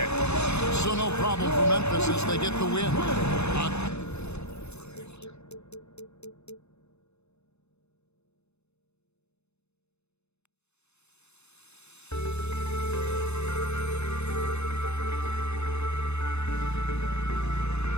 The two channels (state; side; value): late; right; 0.81 ms